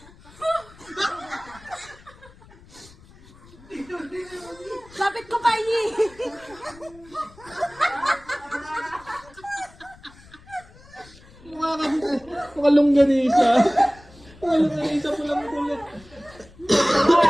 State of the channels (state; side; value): noise; left; rumble, 23 dB below the sound